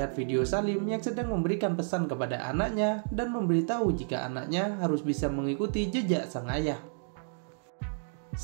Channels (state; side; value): silent; left; digital silence